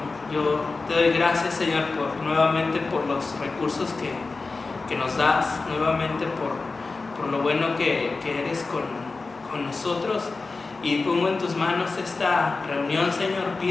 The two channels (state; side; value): quieter; right; 3.9 dB